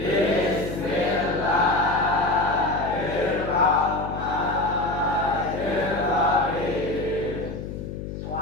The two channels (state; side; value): noise; left; hum, 8 dB below the sound